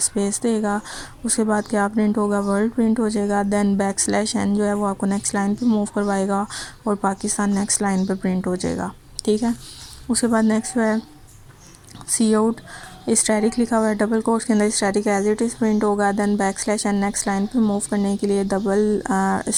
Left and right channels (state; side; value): identical; both; correlation 1.00